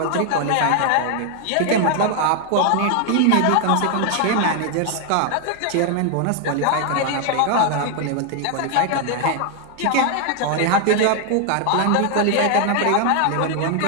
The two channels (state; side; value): different; both; correlation 0.00